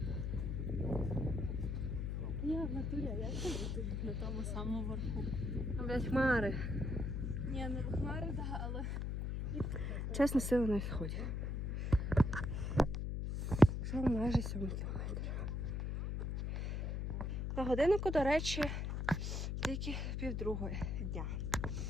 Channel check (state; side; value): noise; left; hum, 1 dB below the sound